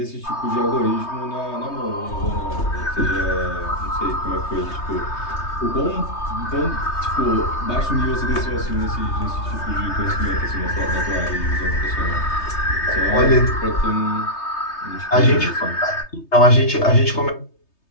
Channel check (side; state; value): right; late; 3.3 ms